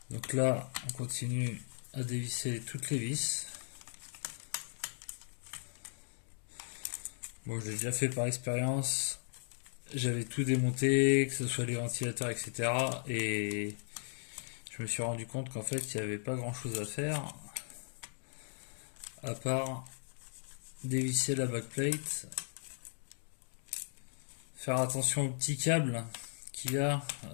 Donc là, on continue à dévisser toutes les vis. Bon, je l'ai déjà fait par expérience. J'avais tout démonté, que ce soit les ventilateurs, etc. Et je me suis rendu compte qu'en fait, il n'y avait pas grand chose à faire à part dévisser la backplate, faire attention aux petits câbles qu'il y a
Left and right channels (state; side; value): silent; right; digital silence